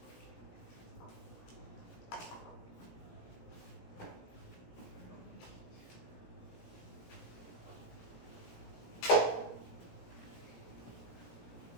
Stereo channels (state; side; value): late; right; 17 ms